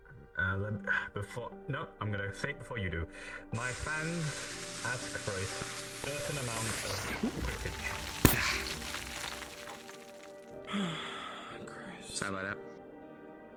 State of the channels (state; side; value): identical; both; correlation 1.00